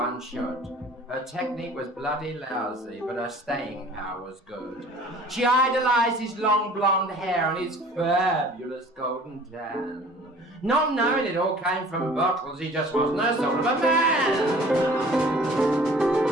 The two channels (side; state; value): both; normal; correlation 0.49